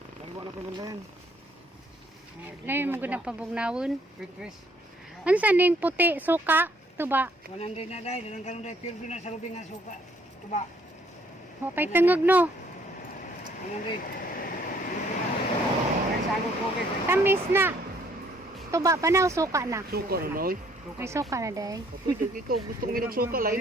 Dalawa na ko yan. Layo mo gud na pabugnawon. Wait, Chris. Unsa ning puti suka tuba? 100 na dai, dalang karon dai pure na sa lubing nga suka. Tuba. Wa pay tengog no. 100. Ay sagot ko kay. Tamis na. Tuba pa na o suka na? Suka na noy. May suka na day. Pwede ikaw gusto mo suka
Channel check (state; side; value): normal; both; correlation 0.64